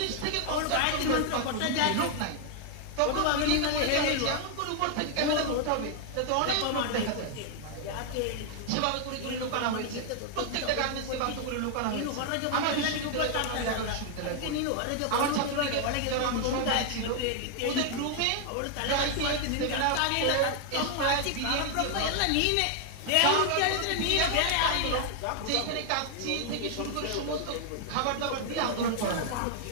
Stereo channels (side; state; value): both; different; correlation 0.00